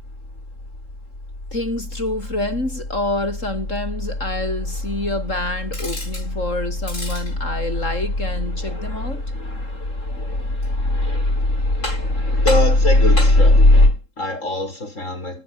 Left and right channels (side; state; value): right; late; 3.7 ms